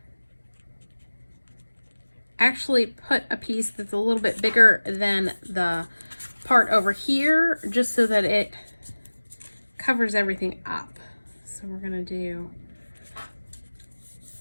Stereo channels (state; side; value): inverted; both; correlation -1.00